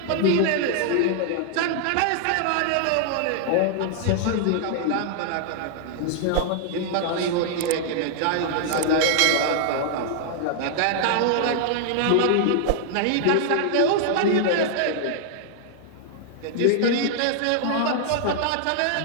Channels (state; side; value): different; both; correlation 0.00